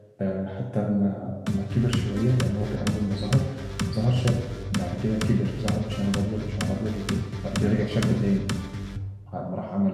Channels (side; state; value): both; identical; correlation 1.00